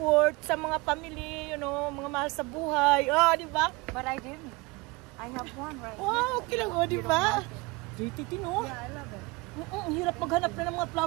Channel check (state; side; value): quieter; left; 24.2 dB